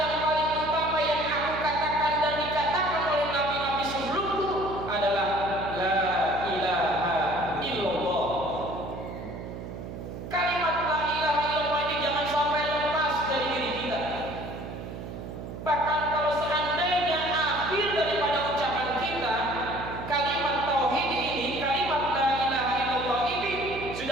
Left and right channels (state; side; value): noise; right; hum, 9 dB below the sound